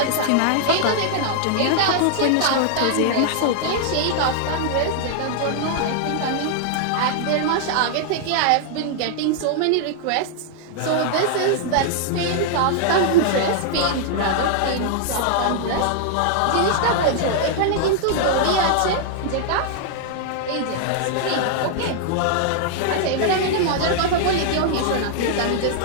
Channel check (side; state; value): both; different; correlation -0.01